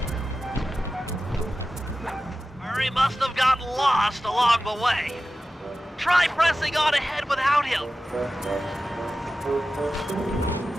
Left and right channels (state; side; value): normal; both; correlation 0.94